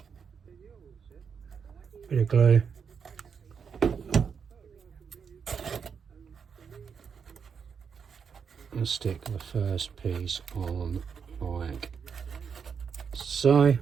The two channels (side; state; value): left; quieter; 6.5 dB